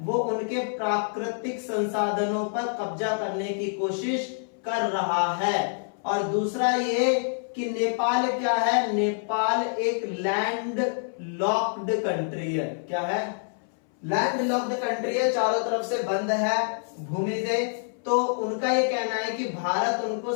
वो उनके प्राकृतिक संसाधनों पर कब्जा करने की कोशिश कर रहा है। और दूसरा ये कि नेपाल क्या है, नेपाल एक लैंड लॉक्ड कंट्री है। क्या है? लैंड लॉक्ड कंट्री है, चारों तरफ से बंद है भूमि से। तो उनका ये कहना है कि भारत उनको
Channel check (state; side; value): silent; right; 60 dB below the other